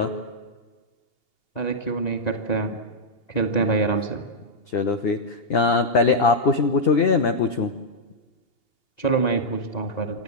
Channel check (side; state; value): right; late; 2.8 ms